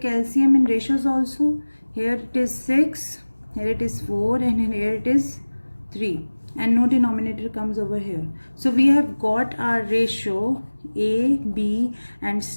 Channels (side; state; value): both; inverted; correlation -1.00